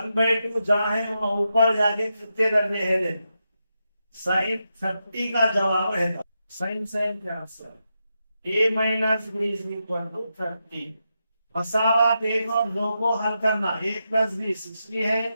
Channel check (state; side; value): inverted; both; correlation -0.86